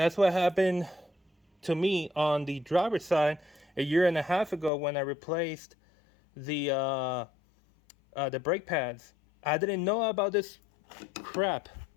what happened to me on the driver's side a year and a half ago when I replaced the brake pads. I didn't know about this crap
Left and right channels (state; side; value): drops out; right; at 4.7 s